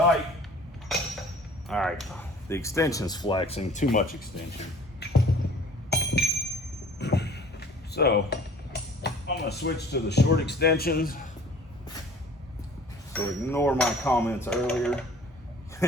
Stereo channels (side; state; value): both; normal; correlation 0.49